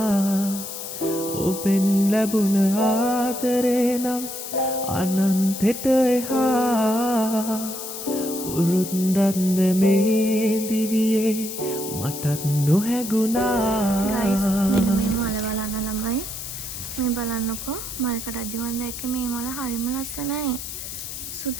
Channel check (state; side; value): noise; left; hiss, 8 dB below the sound